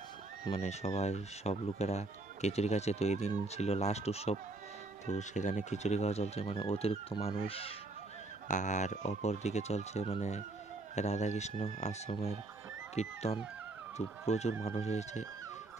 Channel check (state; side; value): quieter; left; 3.1 dB